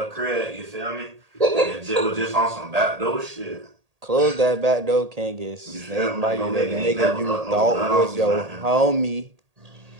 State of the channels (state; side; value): late; left; 1.8 ms